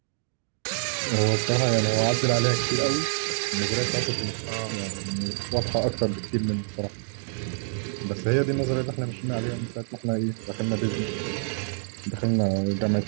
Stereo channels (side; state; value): left; silent; digital silence